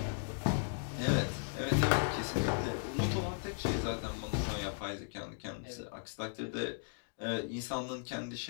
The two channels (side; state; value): right; silent; digital silence